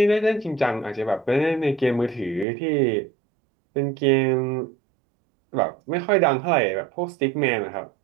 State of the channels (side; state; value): left; drops out; at 2.5 s